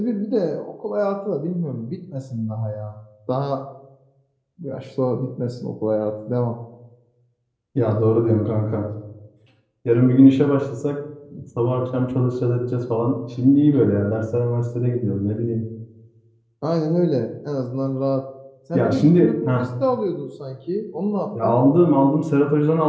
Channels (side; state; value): both; identical; correlation 1.00